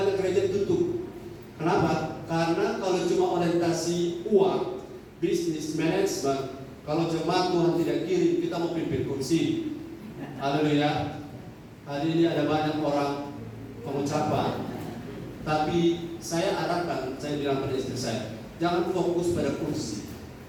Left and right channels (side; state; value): both; identical; correlation 1.00